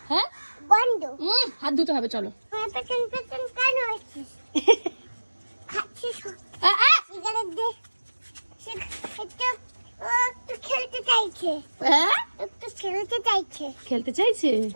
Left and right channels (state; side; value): inverted; both; correlation -1.00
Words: হ্যাঁ বন্ধ। হাত ধুতে হবে চলো। পেছন পেছন কেন আসছিস? খাচ্ছিস সিগারেট দে। একটু খেলতে চাইছে। একটু খেলতে চাইছে। খেলতে চাইছে?